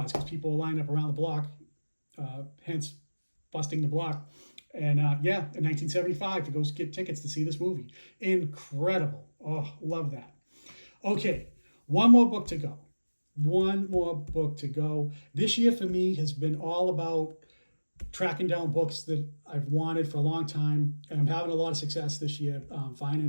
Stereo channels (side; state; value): both; inverted; correlation -1.00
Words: because people line up around the block, hence busting the block. And yeah, in 1975 to go get tickets to see this movie. Incredible. Oh, love that. Okay, one more book to go. One more book to go. This year for me has been all about tracking down books that I've wanted for a long time, and I'm having a lot of success this year